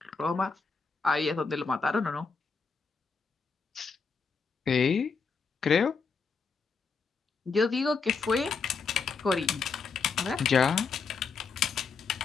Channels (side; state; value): right; quieter; 5.0 dB